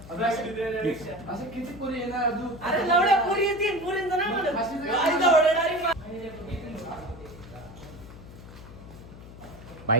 असं किती पोरी येणार तू? अरे लवड्या पोरी येतील पोरींचं नाही म्हणत.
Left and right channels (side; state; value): left; noise; hum, 16 dB below the sound